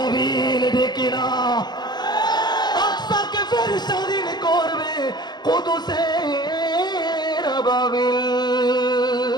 ডেকে না আকসাকে ফের স্বাধীন করবে কুদুসের আবাবিল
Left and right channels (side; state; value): right; late; 0.21 ms